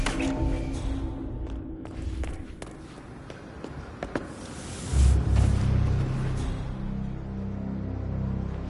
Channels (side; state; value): both; identical; correlation 1.00